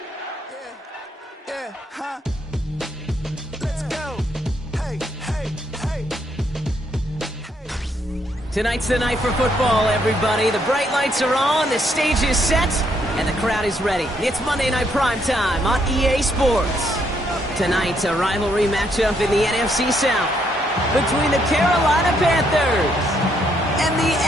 Yeah, huh? Let's go. Hey, hey, hey. Tonight's the night for football, everybody. The bright lights are on, the stage is set, and the crowd is ready. It's Monday Night Primetime on EA Sports. Tonight, a rivalry matchup in the NFC South between the Carolina Panthers and the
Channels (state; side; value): normal; both; correlation 0.73